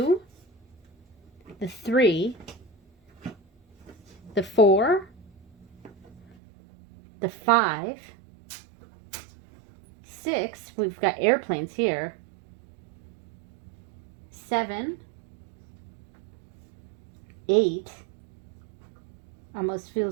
the 3, the 4, the 5, 6, we've got airplanes here, 7, 8, almost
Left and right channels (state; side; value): drops out; left; at 6.2 s